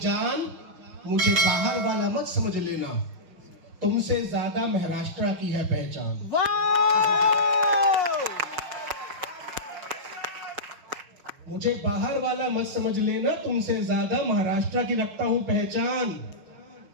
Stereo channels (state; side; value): late; left; 5.5 ms